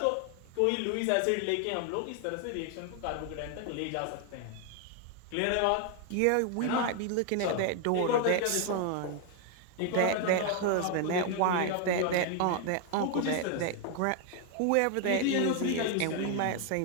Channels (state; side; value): different; both; correlation 0.00